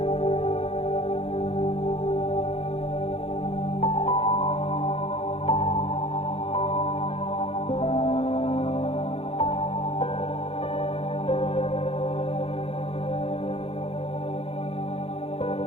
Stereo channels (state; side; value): late; right; 0.28 ms